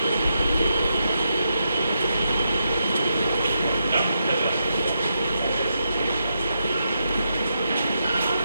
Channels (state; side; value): inverted; both; correlation -0.83